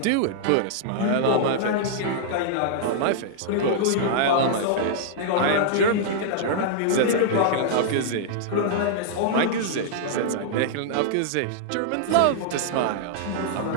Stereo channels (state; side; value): different; both; correlation -0.01